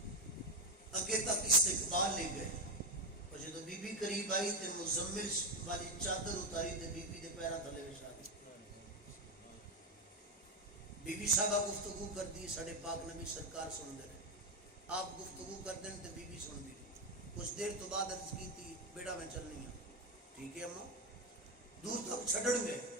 اگے تک استقبال لے گئے اور جب بی بی قریب آئی تے مزمل والی چادر اتاری تے بی بی دے پیرا تھلے بچھا دی. بی بی صاحبہ گفتگو کر دی ساڑھے پاک نبی سرکار سن دے رہے آپ گفتگو کر دیں تے بی بی سن دی کچھ دیر تو بعد عرض کی تھی بیٹا میں چلنی ہوں ٹھیک ہے اماں دور تک چھڑن گئے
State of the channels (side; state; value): both; normal; correlation 0.08